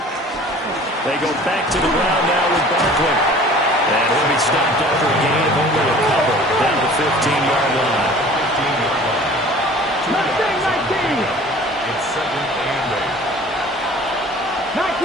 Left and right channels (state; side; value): normal; both; correlation 0.46